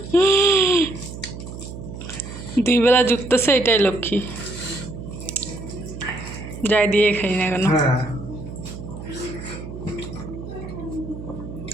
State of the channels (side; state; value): right; noise; hum, 11 dB below the sound